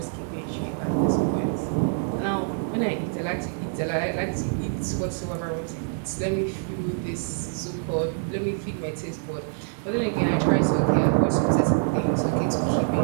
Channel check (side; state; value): left; silent; digital silence